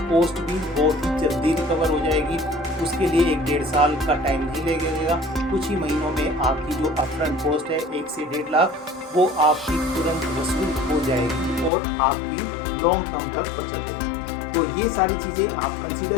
भी बहुत ही जल्दी रिकवर हो जाएगी। उसके लिए 1-1.5 साल का टाइम नहीं लगेगा। कुछ ही महीनों में आपकी जो अपफ्रंट कॉस्ट है 1 से 1.5 लाख, वो आपकी तुरंत वसूल हो जाएगी और आपकी लॉन्ग टर्म तक बचत होगी। तो ये सारी चीज़ें आप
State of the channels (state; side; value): drops out; right; at 11.7 s